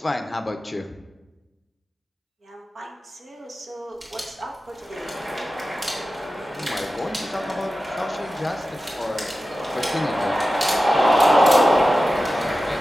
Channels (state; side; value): normal; both; correlation 0.94